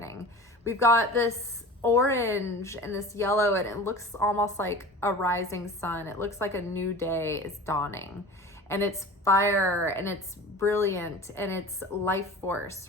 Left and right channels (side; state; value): both; normal; correlation 0.37